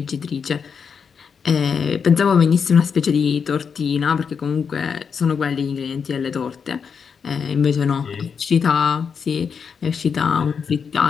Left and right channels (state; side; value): quieter; right; 6.3 dB